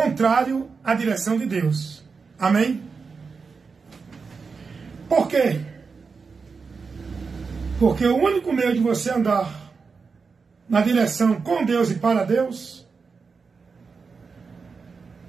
à direção de Deus. Amém? Por quê? Porque o único meio de você andar na direção com Deus e para Deus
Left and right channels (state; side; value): quieter; left; 5.0 dB